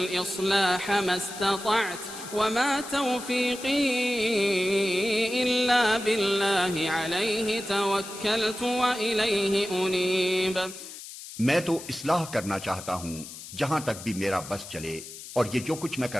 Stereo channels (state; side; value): noise; left; hiss, 13 dB below the sound